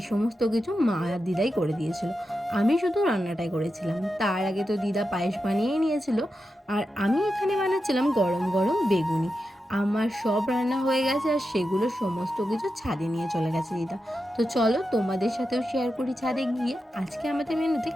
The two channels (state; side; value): normal; both; correlation 0.89